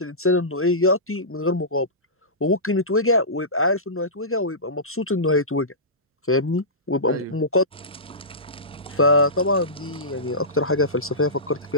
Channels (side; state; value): both; normal; correlation -0.19